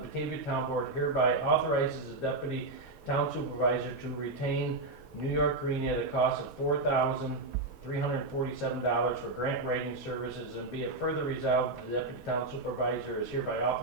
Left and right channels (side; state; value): left; quieter; 3.1 dB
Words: the Batavia Town Board hereby authorizes the Deputy Town Supervisor to retain New York Green at a cost of $4,347 for grant writing services, and be it further resolved that the Deputy Town Supervisor is hereby